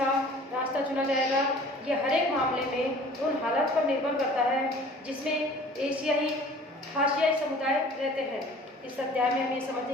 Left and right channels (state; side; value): normal; both; correlation 0.48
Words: रास्ता चुना जाएगा, यह हर एक मामले में उन हालात पर निर्भर करता है जिसमें हाशियाई समुदाय रहते हैं। इस अध्याय में हम ये